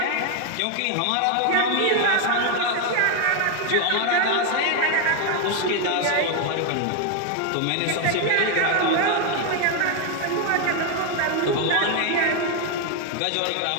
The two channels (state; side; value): different; both; correlation 0.01